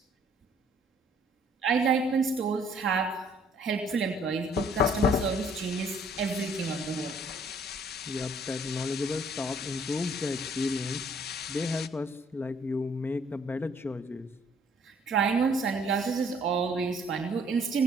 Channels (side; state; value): both; normal; correlation 0.61